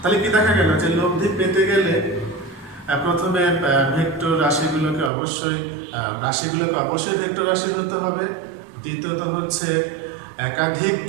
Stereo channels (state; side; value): drops out; left; at 5.1 s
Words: তাহলে কি দেখা গেল যে লব্ধি পেতে গেলে প্রথমে ভেক্টর রাশিগুলোকে অবশ্যই ভেক্টর রাশি হতে হবে। দ্বিতীয়ত হচ্ছে একাধিক